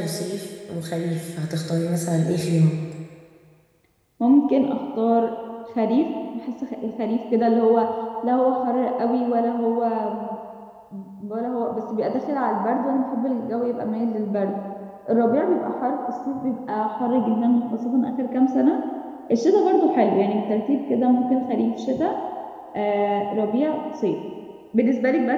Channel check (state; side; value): identical; both; correlation 1.00